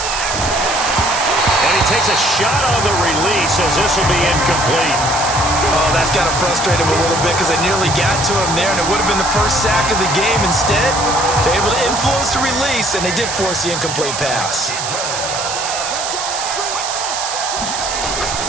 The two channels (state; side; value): noise; right; hiss, 4 dB below the sound